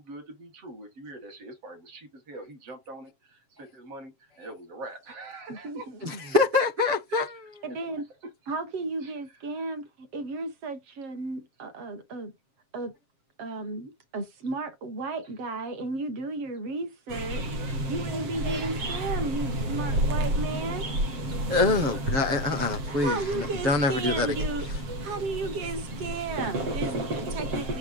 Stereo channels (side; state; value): left; late; 7.4 ms